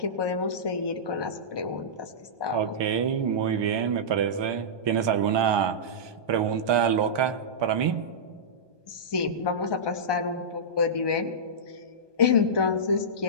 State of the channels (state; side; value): late; left; 1.2 ms